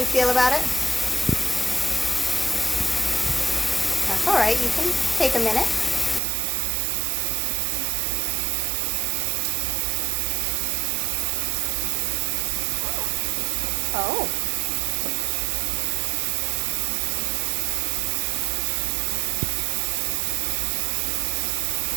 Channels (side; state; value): left; drops out; at 6.2 s